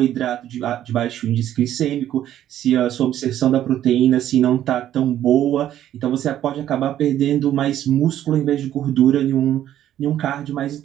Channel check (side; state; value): left; quieter; 11.8 dB